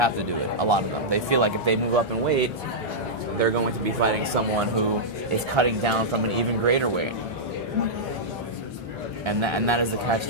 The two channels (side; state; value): both; normal; correlation -0.10